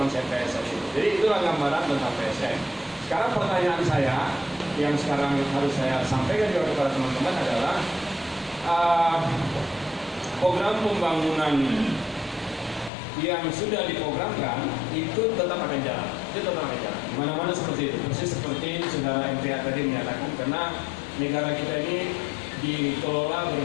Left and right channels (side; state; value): right; drops out; at 12.9 s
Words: PSN itu. Jadi itulah gambaran tentang PSN. Sekarang pertanyaan saya yang sekarang harus saya sampaikan juga kepada teman-teman adalah program pembangunan yang sudah diprogramkan itu tetap akan jalan. Itu tetap akan jalan. Mana-mana seperti itu. Persis seperti saudara MTA tadi menyatakan, karena negara kita ini dikelola